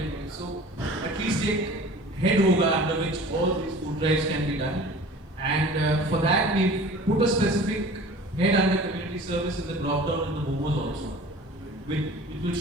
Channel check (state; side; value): normal; both; correlation 0.43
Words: of thing. So at least take head hoga under which all these food drives can be done. And for that we put a specific head under community service in the drop down in the momos also. It will